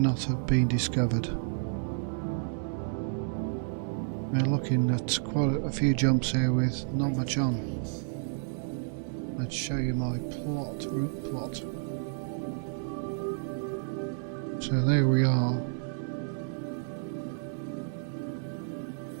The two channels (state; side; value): silent; left; digital silence